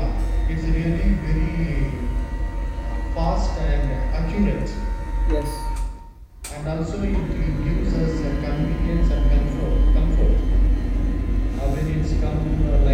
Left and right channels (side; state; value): both; identical; correlation 1.00